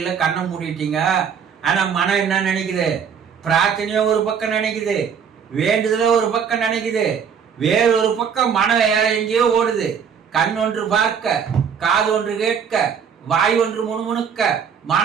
கண்ணை மூடிட்டீங்க. ஆனா மனம் என்ன நினைக்குது? பிரார்த்தனையும் ஒரு பக்கம் நினைக்குது, வேண்டுதல ஒரு பக்கம் நினைக்குது, வேறு ஒரு பக்கம் மனம் வேற எங்கேயோ ஓடுது. கண் ஒன்று பார்க்க, காது ஒன்று கேட்க, வாய் ஒன்று முணுமுணுக்க,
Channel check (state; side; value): quieter; left; 7.1 dB